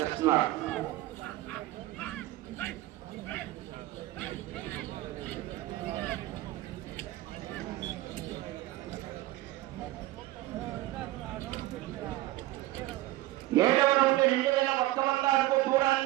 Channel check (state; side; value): quieter; left; 17.0 dB